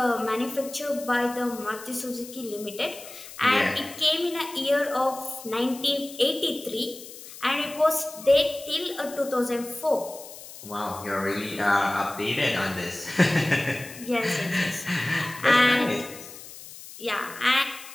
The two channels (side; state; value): left; noise; hiss, 15 dB below the sound